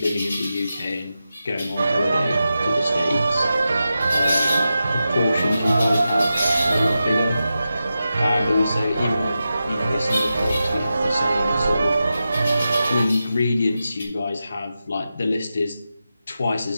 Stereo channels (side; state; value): both; inverted; correlation -0.91